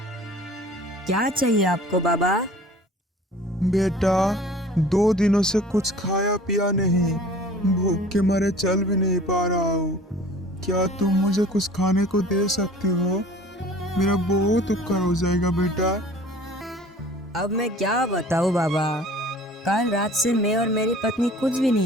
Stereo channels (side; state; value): both; normal; correlation 0.47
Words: क्या चाहिए आपको बाबा? बेटा, 2 दिनों से कुछ खाया पिया नहीं, भूख के मारे चल भी नहीं पा रहा हूँ। क्या तुम मुझे कुछ खाने को दे सकती हो? मेरा बहुत उपकार हो जाएगा बेटा। अब मैं क्या बताऊँ बाबा, कल रात से मैं और मेरी पत्नी कुछ भी